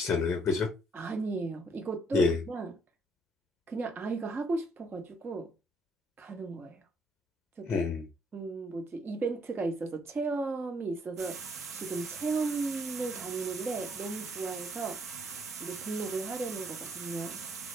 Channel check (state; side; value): normal; both; correlation 0.68